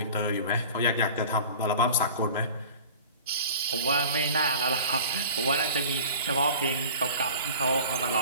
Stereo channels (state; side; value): inverted; both; correlation -0.41